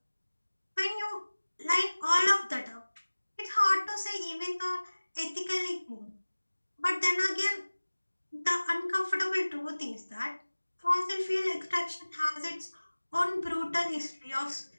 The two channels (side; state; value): both; inverted; correlation -1.00